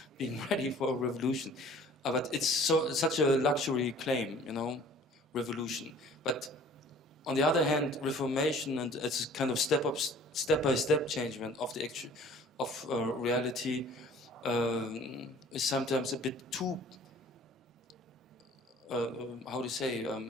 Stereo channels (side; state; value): both; normal; correlation 0.50